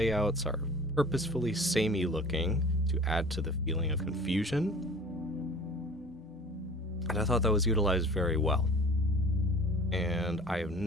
are purposefully samey looking to add to the feeling of confusion. And I thought that was utilized very well. And I have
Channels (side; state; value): both; normal; correlation 0.44